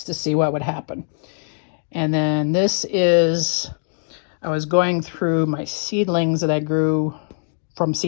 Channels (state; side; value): silent; right; digital silence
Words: to see what would happen. And then this is, I was going through my seedlings that I grew from